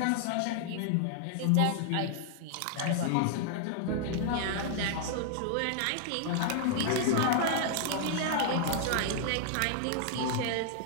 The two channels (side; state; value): both; different; correlation 0.00